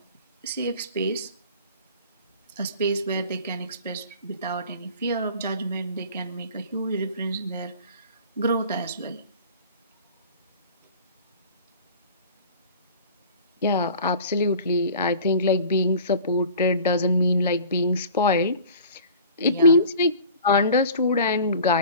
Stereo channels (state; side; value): inverted; both; correlation -0.43